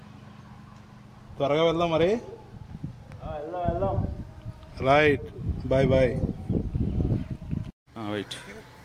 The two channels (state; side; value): identical; both; correlation 1.00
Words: త్వరగా వెళ్దాం మరి. Right, bye bye. Wait.